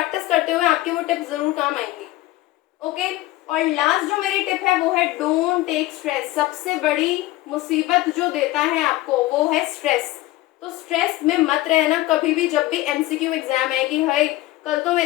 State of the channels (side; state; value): right; quieter; 17.2 dB